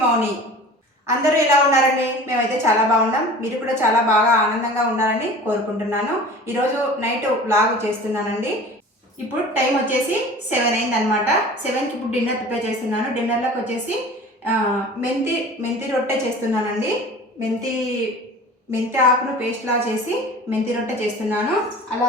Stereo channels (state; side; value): normal; both; correlation 0.40